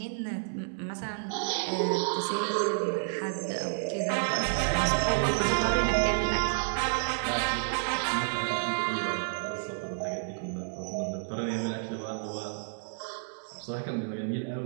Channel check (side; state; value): left; silent; 58 dB below the other